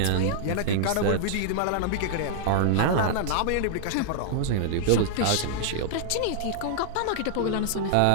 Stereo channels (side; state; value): both; different; correlation -0.01